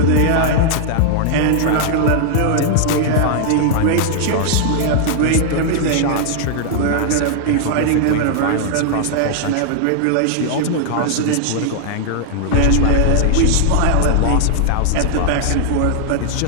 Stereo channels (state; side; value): different; both; correlation -0.01